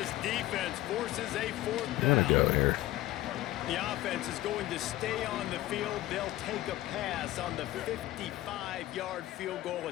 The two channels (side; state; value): right; quieter; 16.0 dB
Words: defense forces a 4th I'm down. going to go here. The offense is going to stay on the field. They'll take a pass on the 55-yard field goal